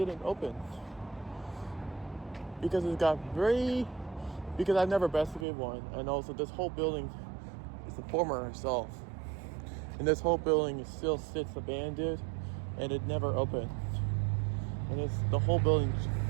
open because because I've never investigated one, and also this whole building is the former herself, and this whole building still sits abandoned, and it never opened, and the whole building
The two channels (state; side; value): drops out; left; at 5.5 s